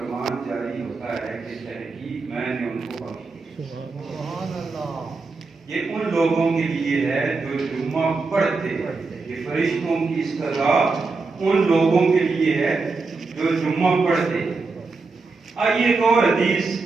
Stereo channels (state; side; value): quieter; left; 4.1 dB